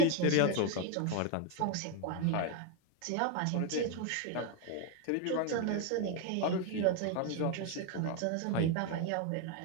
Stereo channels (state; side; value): different; both; correlation 0.01